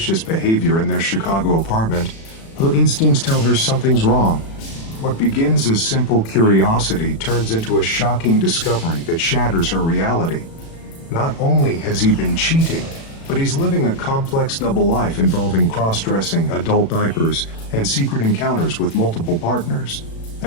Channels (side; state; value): right; late; 36 ms